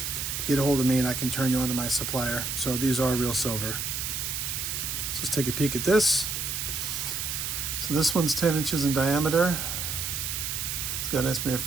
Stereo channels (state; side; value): noise; right; hiss, 3 dB below the sound